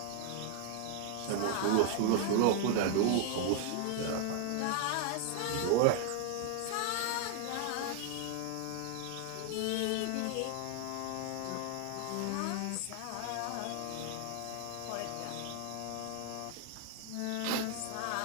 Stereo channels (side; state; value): both; different; correlation 0.00